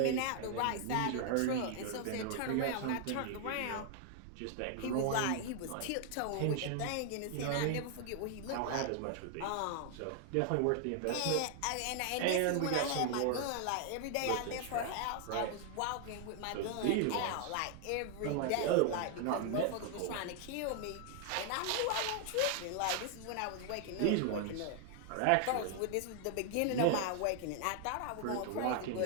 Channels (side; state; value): both; different; correlation 0.00